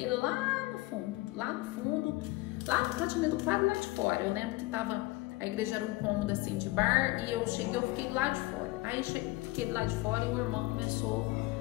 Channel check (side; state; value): right; quieter; 20.6 dB